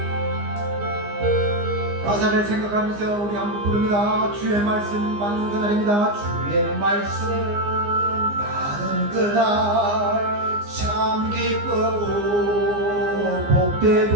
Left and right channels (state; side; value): late; left; 15 ms